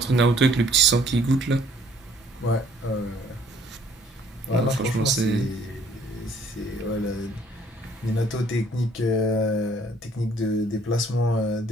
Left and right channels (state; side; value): normal; both; correlation 0.60